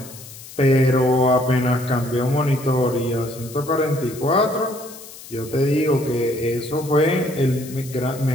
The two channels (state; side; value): noise; left; hiss, 16 dB below the sound